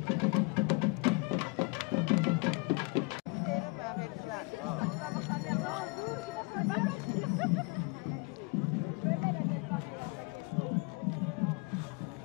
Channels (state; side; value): quieter; right; 28.4 dB